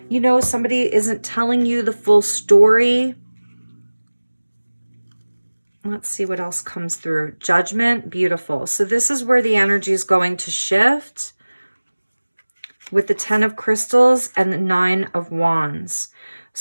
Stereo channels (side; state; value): both; inverted; correlation -1.00